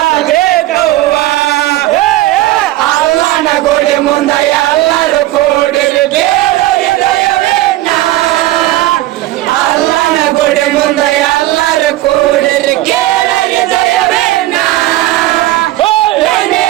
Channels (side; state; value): left; quieter; 16.2 dB